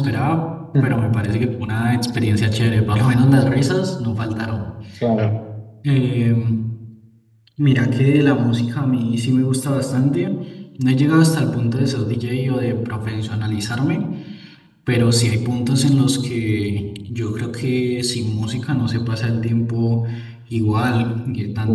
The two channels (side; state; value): both; identical; correlation 1.00